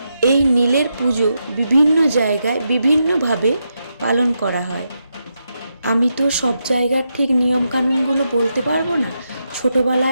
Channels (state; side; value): inverted; both; correlation -0.84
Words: এই নীলের পুজো বিভিন্ন জায়গায় বিভিন্নভাবে পালন করা হয়। আমি তো সব জায়গার ঠিক নিয়মকানুনগুলো বলতে পারবো না।